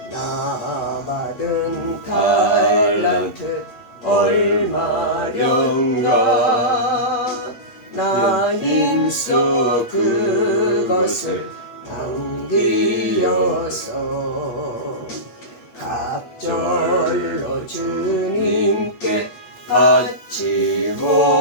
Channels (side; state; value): right; late; 8.3 ms